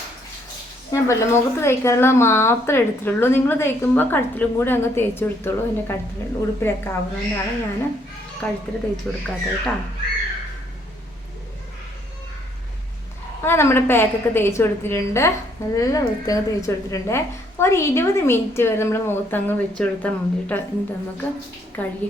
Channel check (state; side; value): normal; both; correlation 0.68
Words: ഞാൻ പല മുഖത്ത് തേക്കാനുള്ളത് മാത്രമേ എടുത്തിട്ടുള്ളൂ. നിങ്ങൾ തേക്കുമ്പോൾ കഴുത്തിലും കൂടി അങ്ങ് തേച്ച് കൊടുത്തോളൂ. എൻ്റെ കഴുത്തിൽ ഉടുപ്പിലൊക്കെ ആവുന്നതുകൊണ്ടാണ് ഞാൻ കഴുത്തിൽ തേച്ച് കൊടുക്കാത്തത് കേട്ടോ. അങ്ങനെ നമ്മുടെ പാക്കൊക്കെ തേച്ച് കൊടുത്തിട്ടുണ്ട്. നല്ല വൃത്തിയൊക്കെ തേച്ച് കൊടുത്തിട്ടുണ്ട്. ഒരു 20 മിനിറ്റ് വരെ നമ്മൾ മുഖത്തങ്ങ് വെച്ച് കൊടുത്താൽ മതി കേട്ടോ. എന്നിട്ട് നമുക്ക്